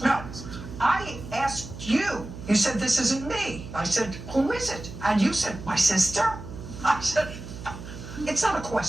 No, I asked you. You said, this isn't me. I said, who is it? And you said, my sister? I said, it's not a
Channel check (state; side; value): noise; right; hum, 12 dB below the sound